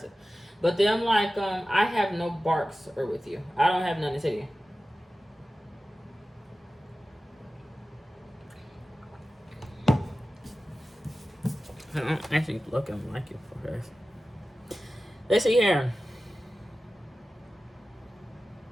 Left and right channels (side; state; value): both; normal; correlation 0.95